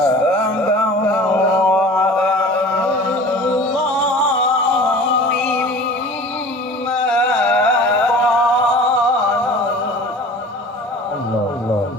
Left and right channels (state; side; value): normal; both; correlation 0.42